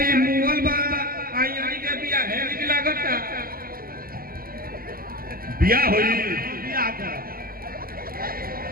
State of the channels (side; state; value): left; late; 0.42 ms